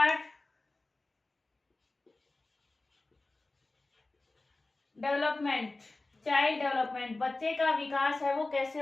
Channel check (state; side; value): quieter; right; 3.1 dB